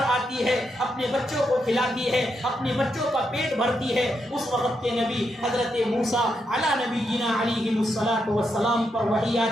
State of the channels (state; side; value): normal; both; correlation 0.82